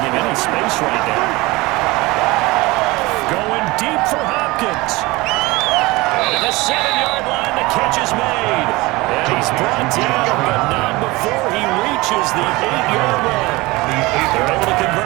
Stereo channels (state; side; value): quieter; left; 21.9 dB